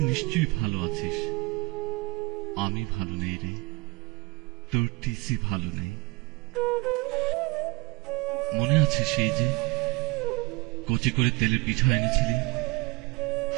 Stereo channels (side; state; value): left; quieter; 23.8 dB